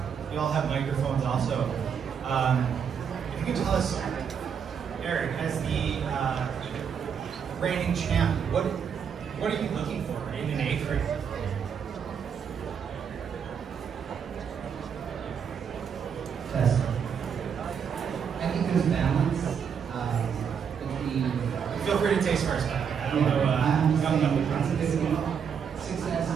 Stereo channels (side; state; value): left; quieter; 7.2 dB